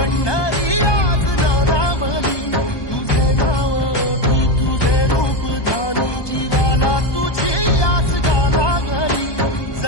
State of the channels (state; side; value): late; right; 1.2 ms